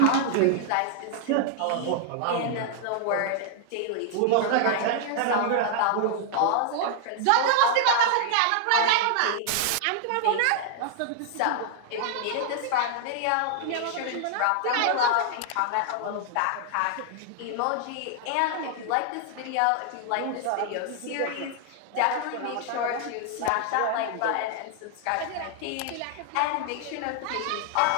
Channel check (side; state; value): both; different; correlation 0.00